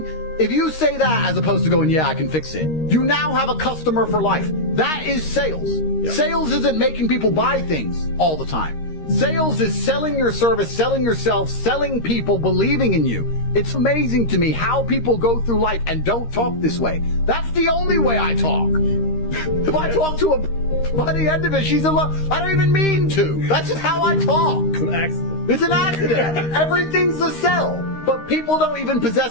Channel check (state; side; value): late; right; 13 ms